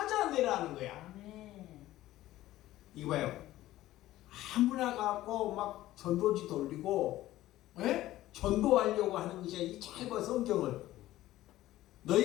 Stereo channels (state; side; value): quieter; right; 15.3 dB